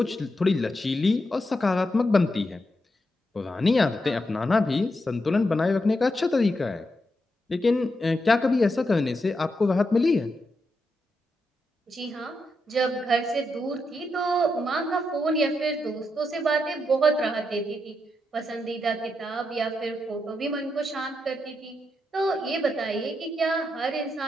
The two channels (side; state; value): both; normal; correlation 0.83